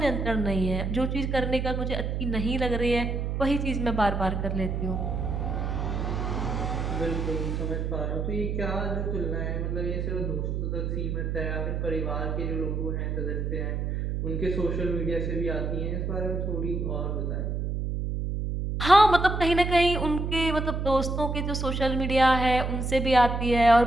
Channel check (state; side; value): noise; right; hum, 1 dB below the sound